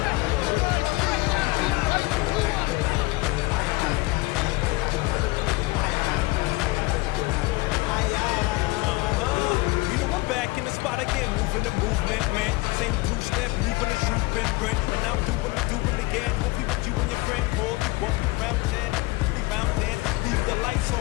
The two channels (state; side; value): quieter; right; 22.4 dB